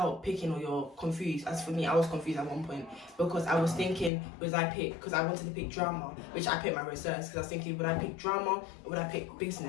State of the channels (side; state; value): right; drops out; at 4.1 s